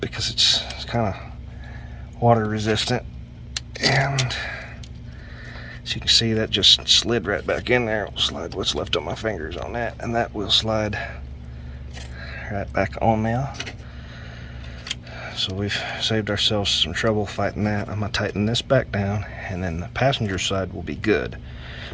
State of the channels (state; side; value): identical; both; correlation 1.00